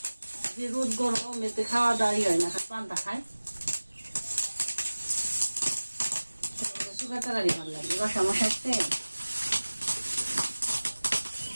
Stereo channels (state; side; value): inverted; both; correlation -1.00